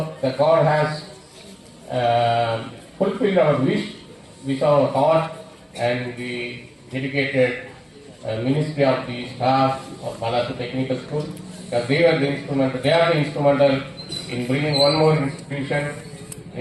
the God has fulfilled our wish our heart, and the dedicated ministry of the staff of Balasu Technical School, because they are the instrumental in bringing one more institution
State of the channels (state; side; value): identical; both; correlation 1.00